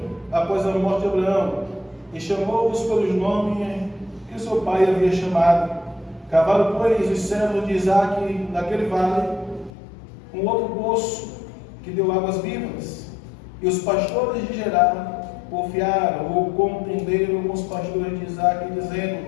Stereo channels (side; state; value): right; drops out; at 9.7 s